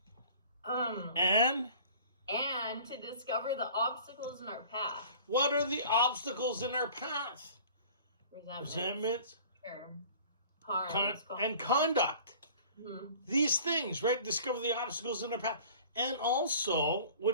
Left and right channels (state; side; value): inverted; both; correlation -0.46